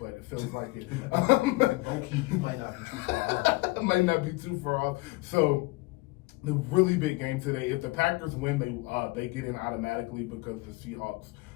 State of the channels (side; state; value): right; quieter; 23.4 dB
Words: it feels like it. Okay, you might not be too far off. Might not be too far off. So the really big game today. If the Packers win, they get in automatically because the Seahawks,